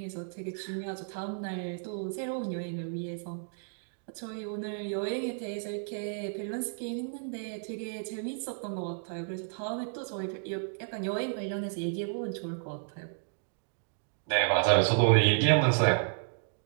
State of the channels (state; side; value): silent; left; digital silence